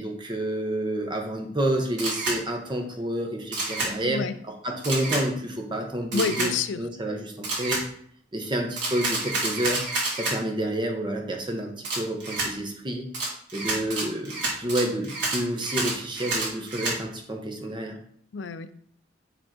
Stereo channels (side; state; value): both; normal; correlation 0.46